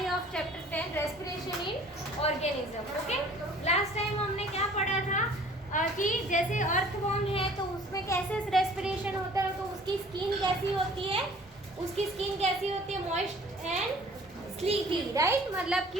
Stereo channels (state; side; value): normal; both; correlation 0.51